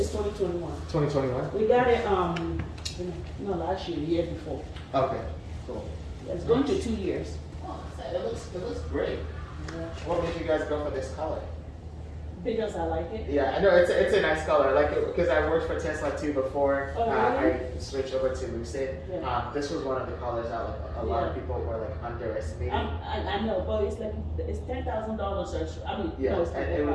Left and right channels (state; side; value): identical; both; correlation 1.00